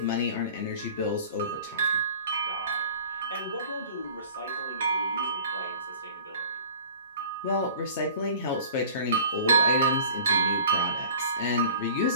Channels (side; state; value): both; inverted; correlation -0.45